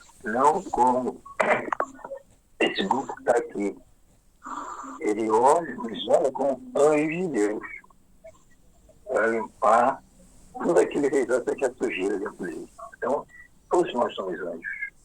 não como esse grupo que está aqui. Ele olha, nos olha como anjo de Deus para limpar tudo aquilo que ele acha que é sujeira dentro dele. Então, todos nós somos anjos,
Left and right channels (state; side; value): identical; both; correlation 1.00